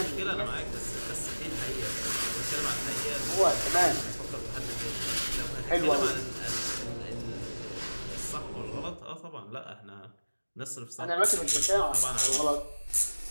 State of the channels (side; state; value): both; inverted; correlation -1.00